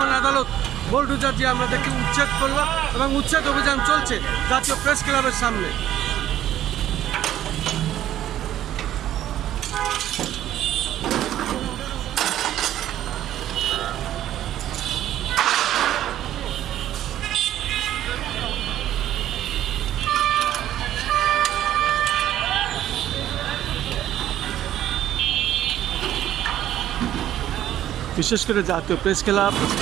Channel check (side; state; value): left; quieter; 12.3 dB